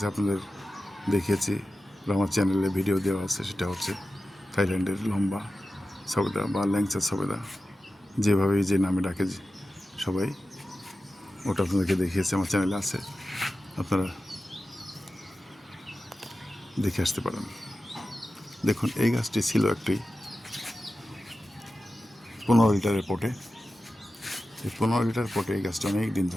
আপনাদের দেখিয়েছি, আমার চ্যানেলে ভিডিও দেওয়া আছে। সেটা হচ্ছে থাইল্যান্ডের লম্বা সবেদা বা ল্যাংচা সবেদা, যেভাবে যে নামে ডাকে সবাই, ওটা আপনাদেরকে দেখিয়েছে, আমার চ্যানেলে আছে, আপনারা দেখে আসতে পারেন। দেখুন, এই গাছটি ছিল একটি 15 লিটারের পটে। এই 15 লিটার পটে এই গাছটা অনেক দিন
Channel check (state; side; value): normal; both; correlation 0.93